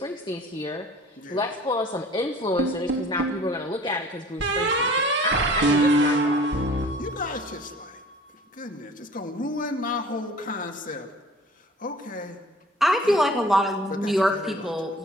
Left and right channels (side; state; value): both; normal; correlation 0.48